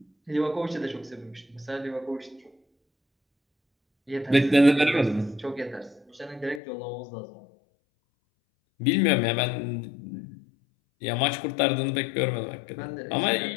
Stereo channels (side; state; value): right; drops out; at 6.6 s